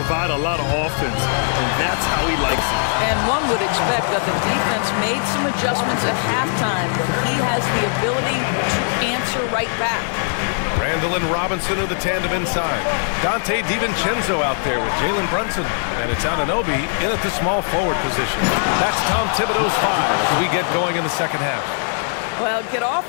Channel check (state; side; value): silent; right; 61 dB below the other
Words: a lot of offense, and that's how he likes it. And one would expect that the defense made some adjustments at halftime, but he has the ability to answer right back. Randall and Robinson are the tandem inside. Dante DiVincenzo out there with Jalen Brunson. And it's Anunoby in at the small forward position. That's Tom Thibodeau's 5 as we get going in the second half. Well, get